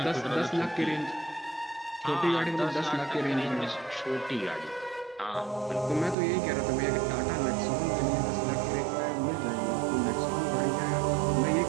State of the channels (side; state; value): left; drops out; at 6.2 s